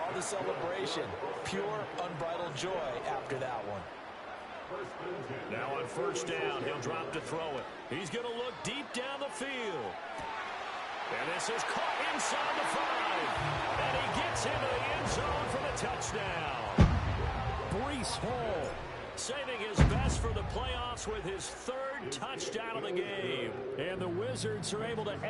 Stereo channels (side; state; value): both; identical; correlation 1.00